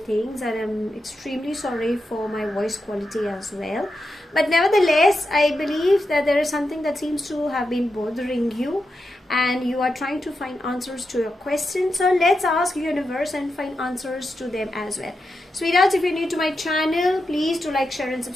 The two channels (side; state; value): both; normal; correlation 0.88